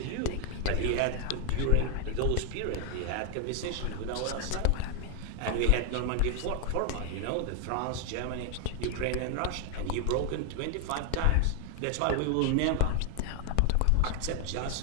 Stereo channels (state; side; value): different; both; correlation 0.00